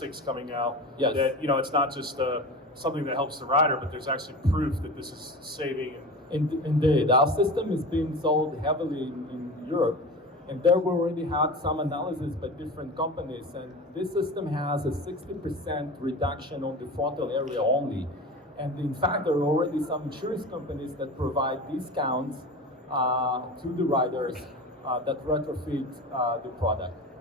coming out. Yes. That it's not just something that helps the rider, but there's actually proof that this is saving. Indeed, our system is being sold heavily in Europe. And there we already had some analysis by different companies, and this system has a 60% reduction on the frontal area only. And in fact, there are already some insurance companies that provide discounts to the riders that retrofit the product.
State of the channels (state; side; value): normal; both; correlation 0.31